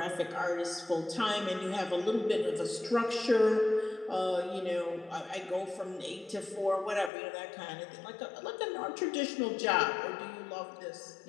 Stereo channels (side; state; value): right; drops out; at 7.1 s